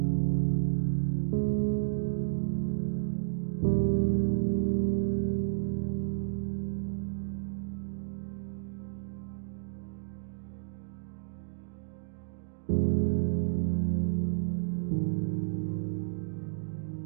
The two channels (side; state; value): left; silent; digital silence